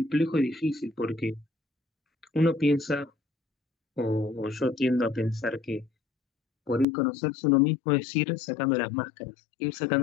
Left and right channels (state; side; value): drops out; right; at 6.9 s